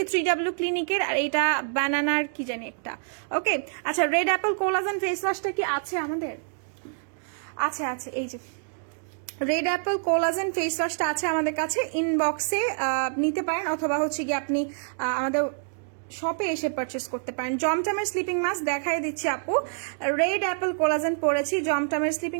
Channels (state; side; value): silent; left; digital silence